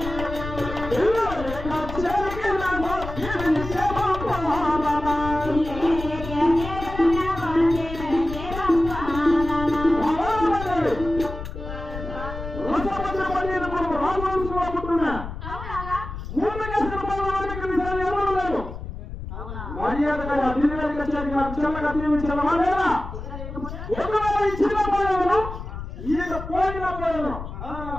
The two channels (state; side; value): noise; left; rumble, 9 dB below the sound